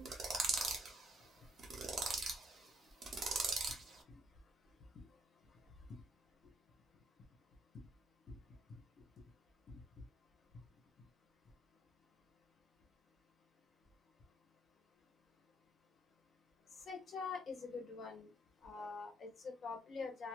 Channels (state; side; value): normal; both; correlation 0.70